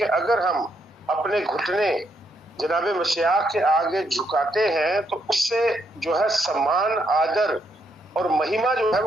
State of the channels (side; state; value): both; normal; correlation 0.76